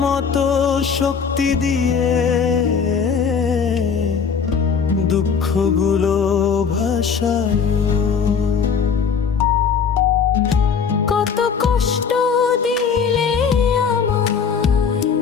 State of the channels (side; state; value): right; quieter; 6.3 dB